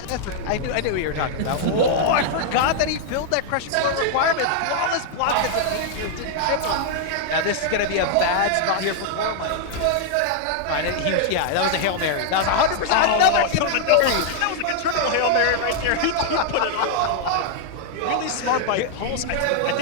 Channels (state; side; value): different; both; correlation 0.00